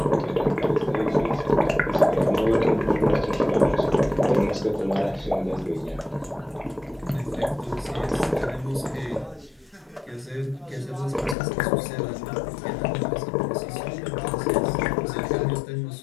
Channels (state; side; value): drops out; right; at 11.4 s